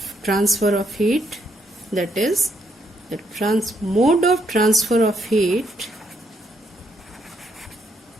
transfer of heat, that is, the mode of transfer of heat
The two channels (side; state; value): both; normal; correlation 0.74